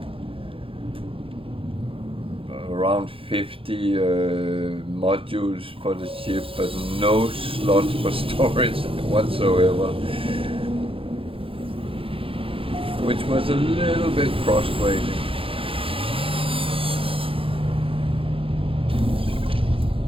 around 50 modules for the ship, but no slots for storage whatsoever, which was a little bit frustrating.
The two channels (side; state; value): left; late; 0.26 ms